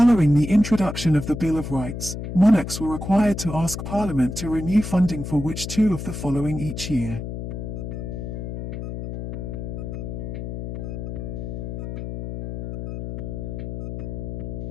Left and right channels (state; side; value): noise; left; hum, 6 dB below the sound